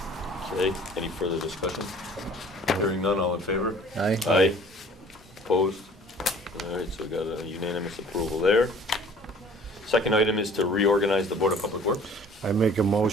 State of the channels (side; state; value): both; normal; correlation 0.51